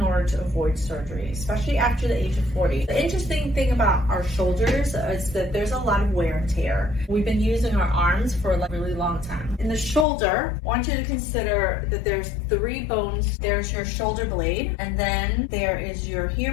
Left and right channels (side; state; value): right; drops out; at 10.1 s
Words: order to avoid surgery, especially after the age of 40. The interesting thing about our shoulders is that there's a lot of wear and tear. We've been using our arms for a really long time. In the shoulder, I want you to consider that there's 3 bones. There's your shoulder blade, and then there is your